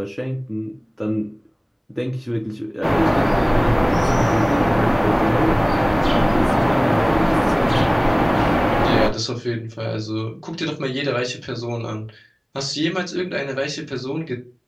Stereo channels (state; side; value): identical; both; correlation 1.00